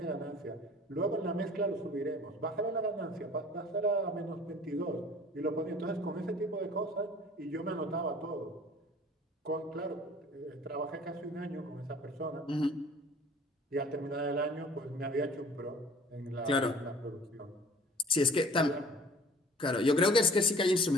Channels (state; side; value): normal; both; correlation 0.49